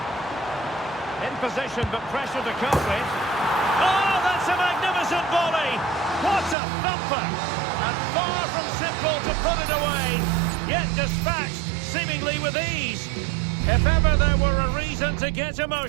In position, but pressure to cope with. Oh, that's a magnificent volley! What a thumper! And far from simple to put it away, yet dispatched seemingly with ease. If ever there were a reason to get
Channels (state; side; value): drops out; left; at 6.6 s